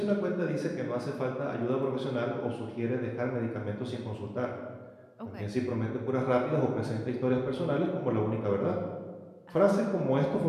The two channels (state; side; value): identical; both; correlation 1.00